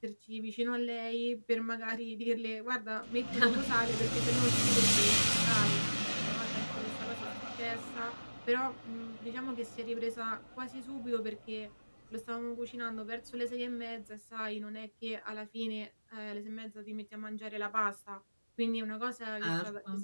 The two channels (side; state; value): both; inverted; correlation -1.00